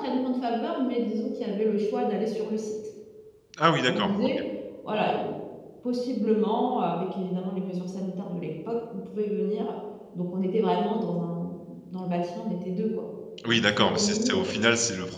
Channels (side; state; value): both; identical; correlation 1.00